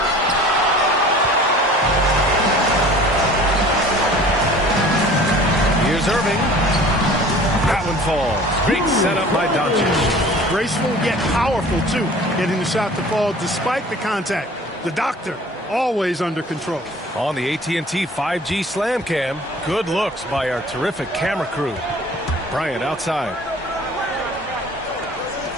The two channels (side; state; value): both; normal; correlation 0.47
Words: Here's Irving. That one falls. Great setup by Doncic. Graceful yet powerful, too. Getting the shot to fall despite the contact. The doctor, always under control. On the AT&T 5G Slam Cam, good looks by our terrific camera crew. Bryant outside.